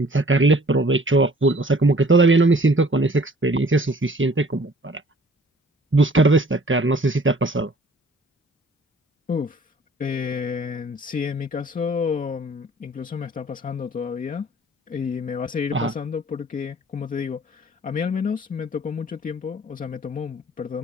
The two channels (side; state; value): both; normal; correlation 0.54